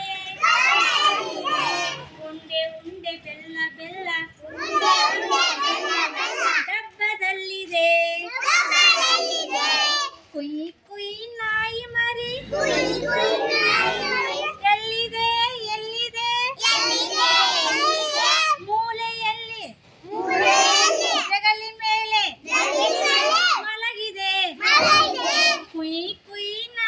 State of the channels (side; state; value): both; identical; correlation 1.00